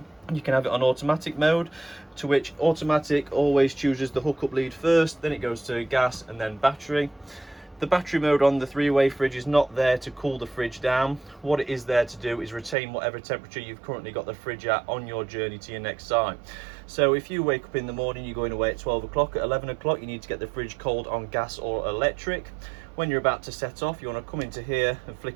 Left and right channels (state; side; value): drops out; left; at 12.8 s